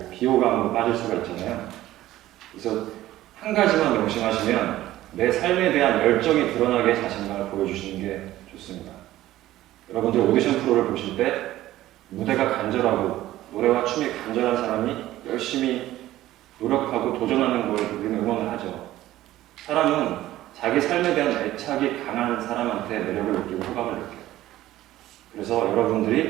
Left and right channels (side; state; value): left; quieter; 15.0 dB